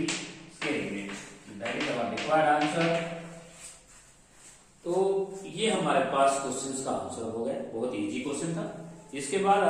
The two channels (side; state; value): both; identical; correlation 1.00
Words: इसके limit, that is our required answer. तो ये हमारे पास क्वेश्चन का आंसर हो गया, बहुत इजी क्वेश्चन था। इसके बाद